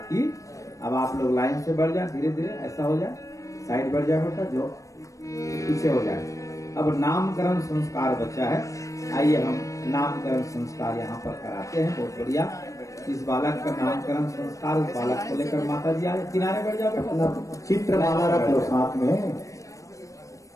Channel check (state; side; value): late; right; 0.16 ms